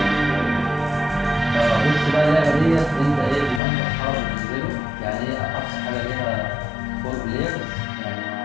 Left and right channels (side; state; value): right; drops out; at 3.6 s